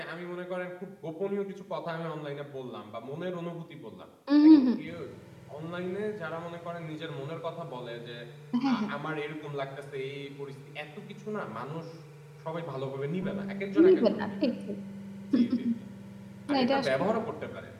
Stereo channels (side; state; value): both; identical; correlation 1.00